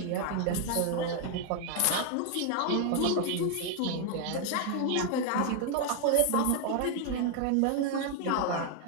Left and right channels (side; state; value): both; different; correlation 0.00